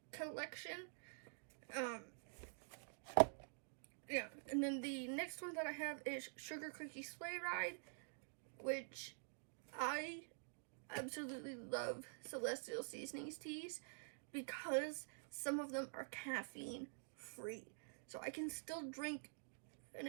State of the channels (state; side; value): silent; left; digital silence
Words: collection. Yeah, and then the next one that I have is Sugar Cookie Sleigh Ride, which I absolutely love Celestial Seasonings teas because some of them are caffeine free. So I can still drink and